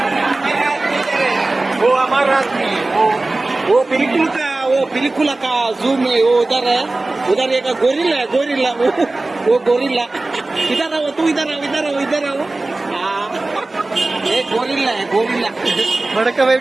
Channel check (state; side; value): quieter; left; 3.0 dB